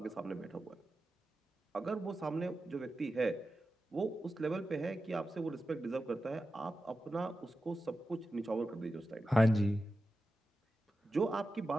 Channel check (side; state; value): both; normal; correlation 0.92